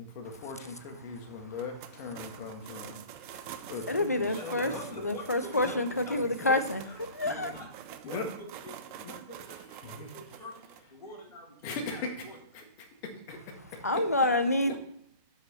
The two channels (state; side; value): inverted; both; correlation -0.43